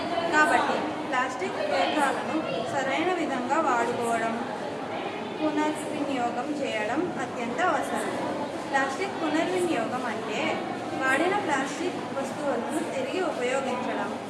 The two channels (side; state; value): both; identical; correlation 1.00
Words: కాబట్టి ప్లాస్టిక్ వ్యర్థాలను సరైన విధంగా వాడుకోవడం, పునర్వినియోగం చేయడం అత్యంత అవసరం. ప్లాస్టిక్ పునర్వినియోగం అంటే వాడిన ప్లాస్టిక్ వస్తువులను తిరిగి ఉపయోగించడం